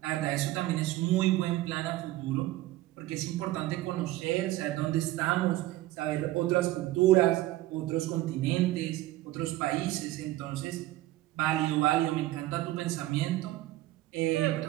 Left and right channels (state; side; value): quieter; left; 16.2 dB